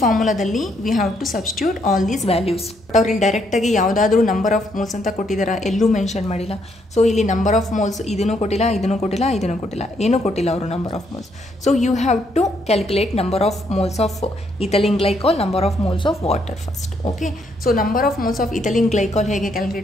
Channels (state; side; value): normal; both; correlation 0.73